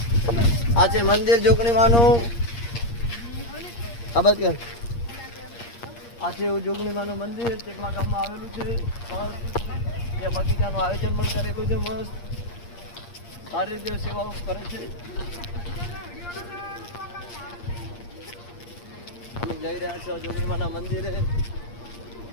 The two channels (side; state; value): right; late; 8.6 ms